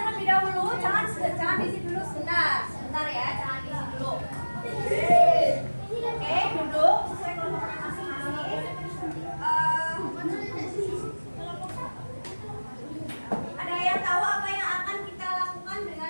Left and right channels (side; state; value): both; inverted; correlation -1.00